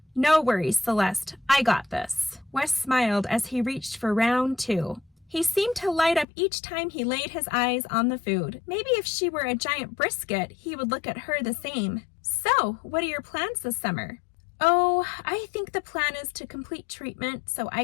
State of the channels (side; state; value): right; drops out; at 6.2 s